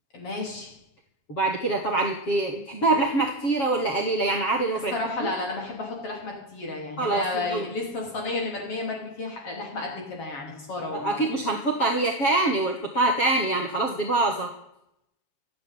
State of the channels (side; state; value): right; late; 7.3 ms